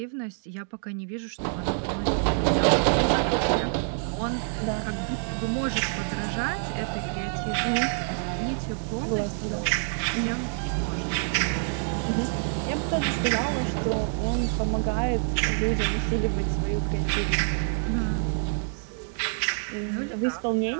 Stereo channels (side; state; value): left; silent; 55 dB below the other